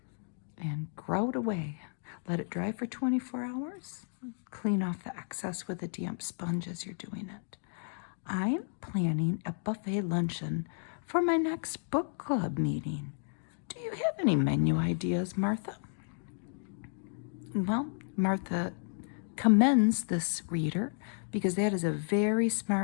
And grout away. Let it dry for 24 hours. Clean off the excess with a damp sponge as you're doing it. I'm planning a buffet luncheon for my next book club meeting. Do you have any menu ideas, Martha? Well, Martha commends this reader because that is a very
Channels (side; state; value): right; silent; digital silence